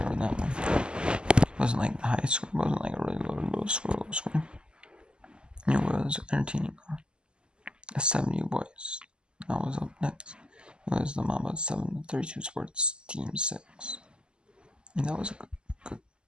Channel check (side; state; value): left; late; 0.049 ms